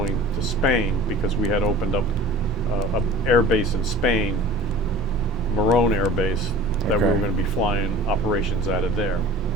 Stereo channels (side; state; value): both; normal; correlation 0.41